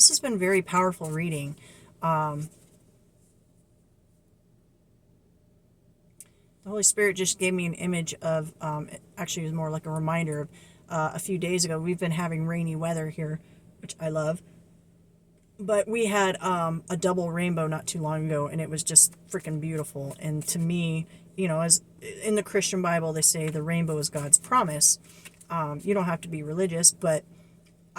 has been very powerful reading. The Holy Spirit just gave me an image of, actually it was more like a reminder of a few days ago. We've been having rainy weather here, which I love. But we had a double rainbow not too long ago, and it was just freaking beautiful. And to me, as in the Christian Bible, they say the rainbow is God's promise. You don't have to be religious, but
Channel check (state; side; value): identical; both; correlation 1.00